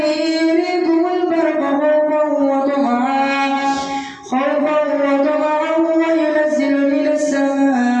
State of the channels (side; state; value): both; identical; correlation 1.00